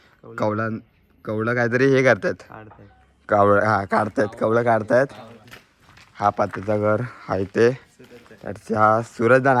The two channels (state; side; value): identical; both; correlation 1.00